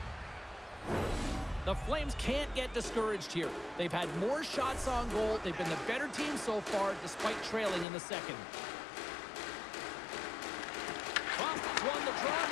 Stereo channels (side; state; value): right; drops out; at 7.9 s